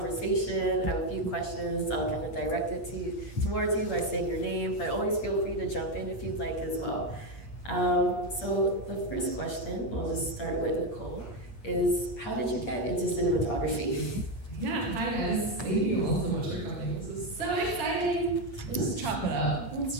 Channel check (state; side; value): late; right; 8.5 ms